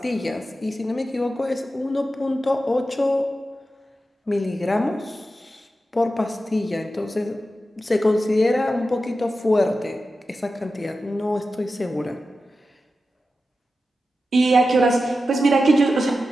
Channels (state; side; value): normal; both; correlation 0.92